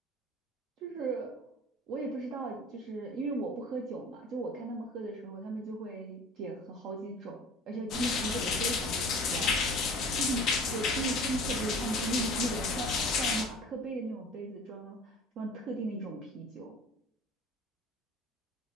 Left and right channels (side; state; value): both; normal; correlation 0.44